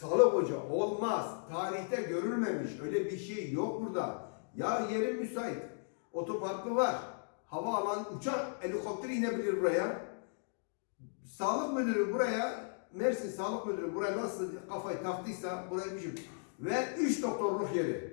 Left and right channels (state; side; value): silent; right; digital silence